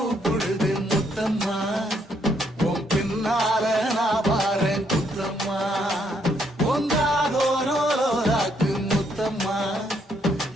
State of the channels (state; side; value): normal; both; correlation 0.72